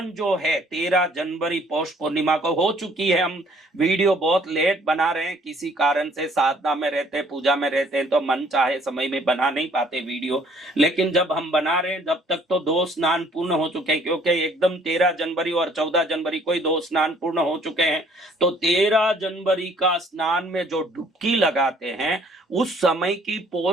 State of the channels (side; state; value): both; normal; correlation 0.59